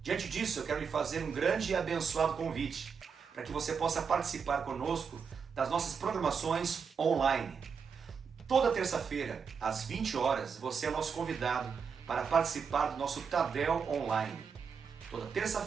Diante disso, eu quero lhe fazer um grande e abençoado convite, para que você possa participar conosco das nossas programações online. Toda terça-feira, às 20 horas, você é nosso convidado para participar do nosso Tadel Online. Toda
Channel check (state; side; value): quieter; left; 6.2 dB